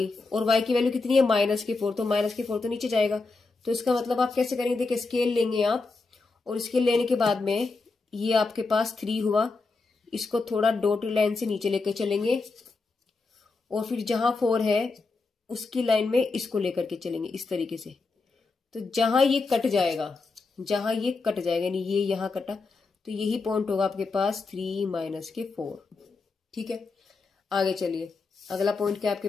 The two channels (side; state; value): right; quieter; 3.9 dB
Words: और y की वैल्यू कितनी है -4, तो -4 तो नीचे जाएगा। तो इसका मतलब आप कैसे करेंगे, देखिए स्केल लेंगे आप, और स्केल लेने के बाद में ये आपके पास 3 हुआ, इसको थोड़ा डॉटेड लाइन से नीचे लेकर चलेंगे, और फिर जहां 4 है उसकी लाइन में इसको लेकर के चलेंगे इस तरीके से। तो जहां ये कट जाएगा, यानी ये यहां कटा, तो यही पॉइंट होगा आपके पास 3 - 4। ठीक है, आगे चलिए अगला पॉइंट क्या है आपके